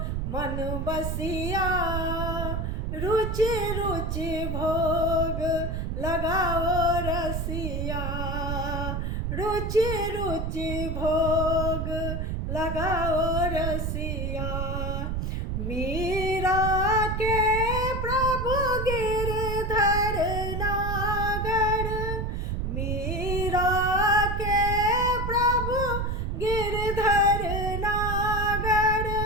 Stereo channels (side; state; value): right; noise; rumble, 2 dB below the sound